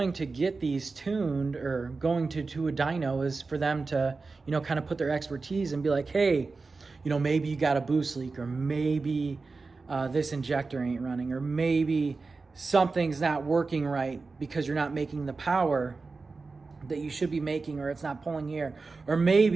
to get these tuned or going to a dyno is for them to, you know, kind of put their expertise and be like, hey, you know, maybe you got a boost leak, or maybe this injector ain't running, or maybe something's not working right because you're not making the power that you should be making, or it's not pulling air, or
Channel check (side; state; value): left; quieter; 4.1 dB